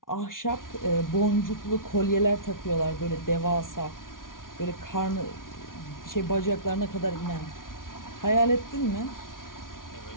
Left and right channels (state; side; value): late; right; 0.89 ms